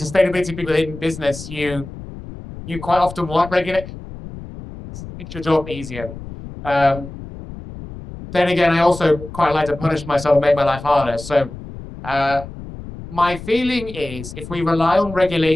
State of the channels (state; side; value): noise; left; rumble, 13 dB below the sound